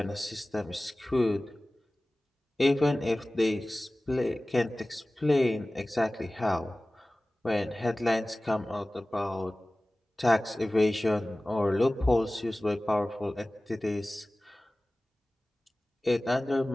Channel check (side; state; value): both; normal; correlation 0.98